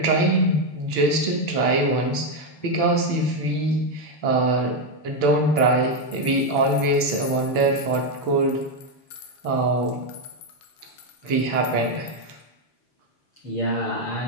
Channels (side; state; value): right; late; 7.0 ms